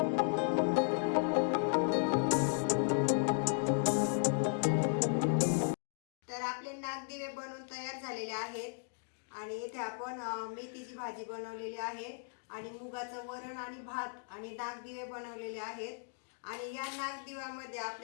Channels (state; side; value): silent; right; digital silence